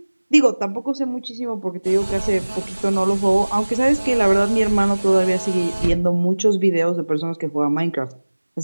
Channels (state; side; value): inverted; both; correlation -1.00